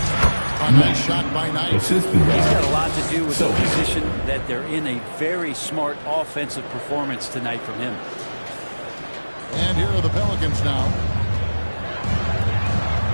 A nice shot by Knight. He's got a lot to do with the position that they're in. A very smart offensive performance tonight from him. And here are the Pelicans now.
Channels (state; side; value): inverted; both; correlation -1.00